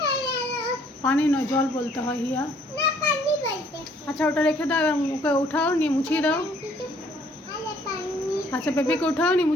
পানি নয়, জল বলতে হয় হিয়া। আচ্ছা ওটা রেখে দাও, এবার ওকে উঠাও, নিয়ে মুছিয়ে দাও। আচ্ছা বেবিকে উঠাও, নিয়ে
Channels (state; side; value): normal; both; correlation 0.62